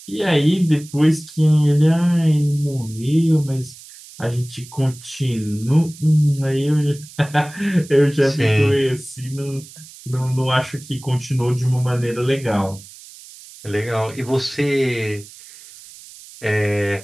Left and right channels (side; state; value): right; noise; hiss, 19 dB below the sound